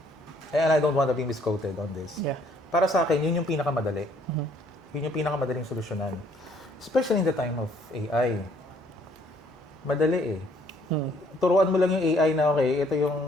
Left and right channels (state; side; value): normal; both; correlation 0.63